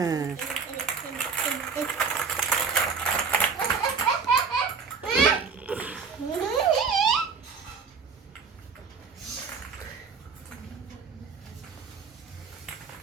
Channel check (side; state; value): left; quieter; 5.4 dB